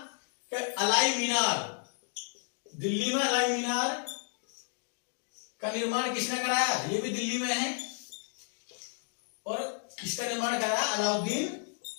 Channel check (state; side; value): silent; right; 56 dB below the other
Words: कि अलाई मीनार, दिल्ली में अलाई मीनार का निर्माण किसने कराया, ये भी दिल्ली में है। और इसका निर्माण कराया अलाउद्दीन